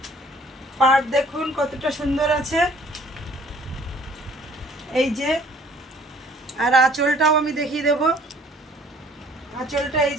পাট দেখুন কতটা সুন্দর আছে। এই যে আর আঁচলটাও আমি দেখিয়ে দেব। আঁচলটা এই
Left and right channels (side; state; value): both; normal; correlation 0.56